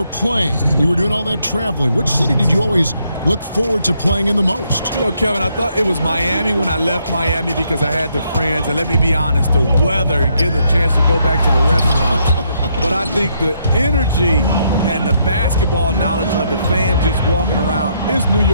playing, you were doing all that traveling, which city did you always look forward to playing in the most? You know, Kevin, I thought it was Miami when I left Miami because I had the friends. And let me be honest, the weather and getting a chance to go back to the restaurant. But I think the energy and the basketball knowledge of the fans just walking around is New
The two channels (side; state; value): both; inverted; correlation -0.74